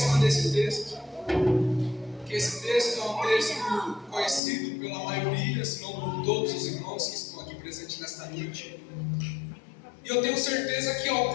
desse texto, porque esse texto é um texto conhecido pela maioria, se não por todos os irmãos que estão aqui presentes nesta noite. E eu tenho certeza que em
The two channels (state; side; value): drops out; right; at 4.4 s